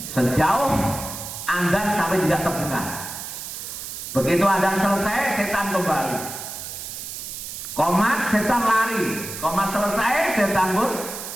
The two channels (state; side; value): noise; right; hiss, 8 dB below the sound